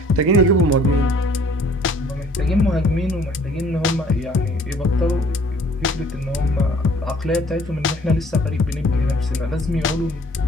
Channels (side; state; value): both; normal; correlation 0.56